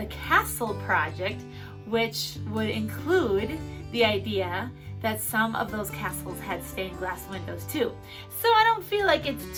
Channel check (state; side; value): identical; both; correlation 1.00